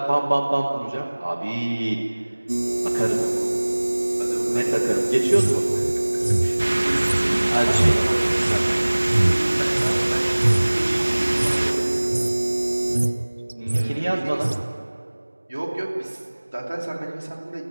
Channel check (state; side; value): inverted; both; correlation -1.00